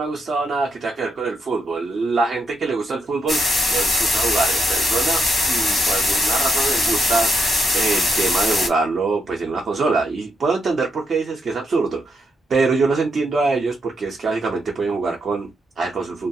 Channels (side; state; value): both; normal; correlation 0.79